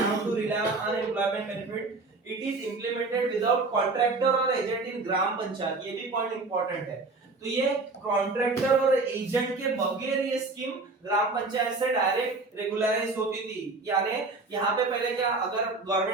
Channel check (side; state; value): left; quieter; 3.6 dB